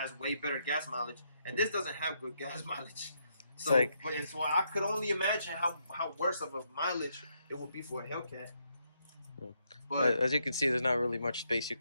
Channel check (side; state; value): both; inverted; correlation -0.77